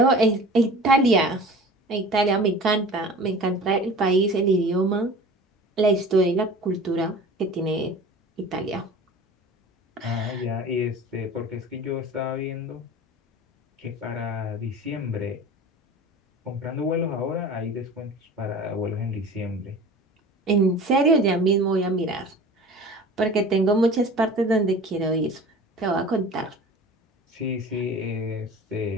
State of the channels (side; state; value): both; normal; correlation 0.40